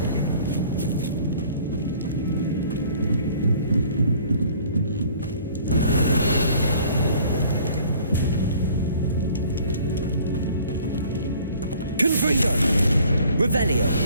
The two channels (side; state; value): both; inverted; correlation -0.54